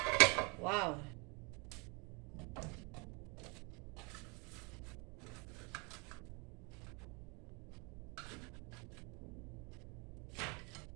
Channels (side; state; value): left; quieter; 30.4 dB